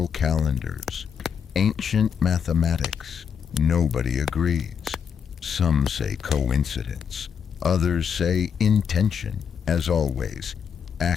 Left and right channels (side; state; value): right; quieter; 7.1 dB